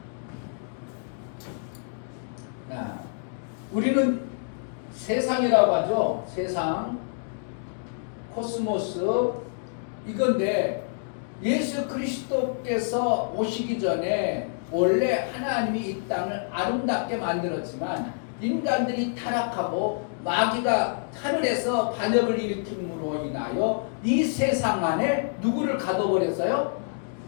우리는 세상이라고 하죠. 세상, 코스모스 이건데 예수 그리스도께서 오시기 전에 원래 하나님이 이 땅을 아름답게 만들었지만 인간들이 타락하고 마귀가 하늘에서 반역을 일으킴으로 인하여 이 세상 안에 누구를 가둬버렸어요?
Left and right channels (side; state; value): right; silent; digital silence